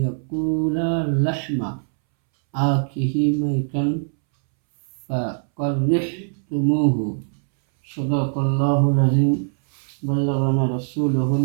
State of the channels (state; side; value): silent; left; 64 dB below the other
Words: يأكل لحم أخيه ميتا فكرهتموه. صدق الله العظيم. بلغنا رسوله